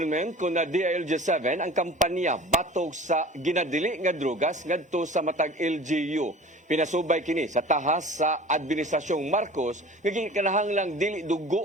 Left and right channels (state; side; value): normal; both; correlation 0.42